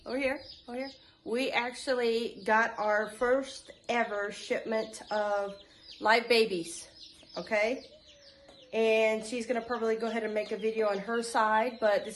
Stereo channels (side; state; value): both; identical; correlation 1.00